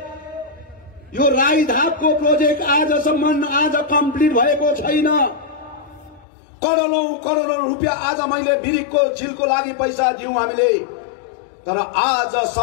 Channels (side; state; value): right; drops out; at 6.2 s